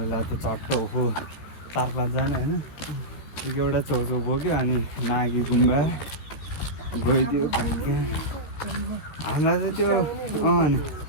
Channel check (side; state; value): right; late; 13 ms